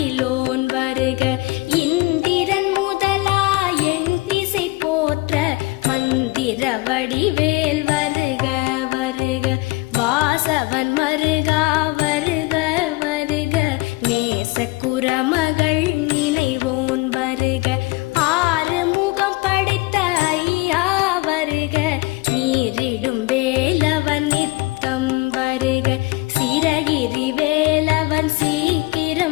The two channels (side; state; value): right; quieter; 22.2 dB